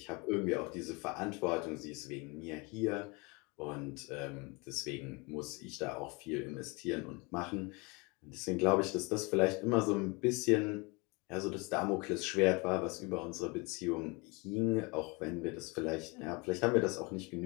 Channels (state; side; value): quieter; right; 28.3 dB